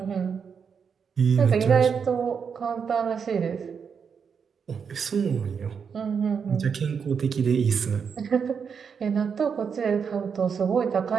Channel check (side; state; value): left; quieter; 6.5 dB